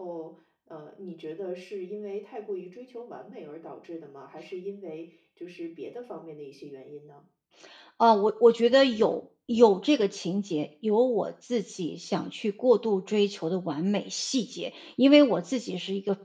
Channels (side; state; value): both; identical; correlation 1.00